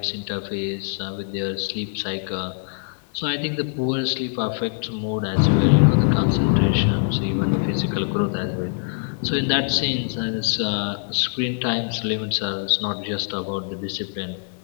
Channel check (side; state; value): right; silent; digital silence